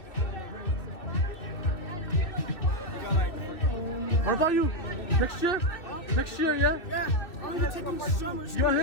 What about you? Next year? Next year, yeah? Yeah, I'm gonna taking summer You school.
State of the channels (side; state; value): right; late; 2.5 ms